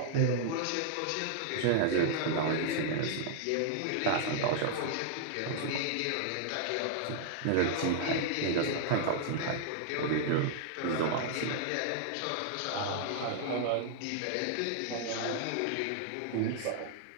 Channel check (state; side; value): different; both; correlation -0.01